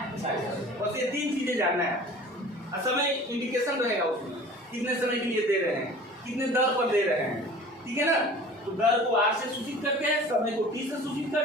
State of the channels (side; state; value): both; normal; correlation 0.43